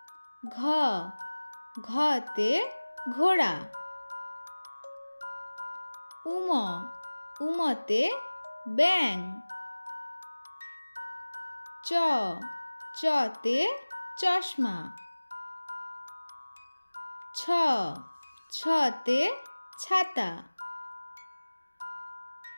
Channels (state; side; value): inverted; both; correlation -1.00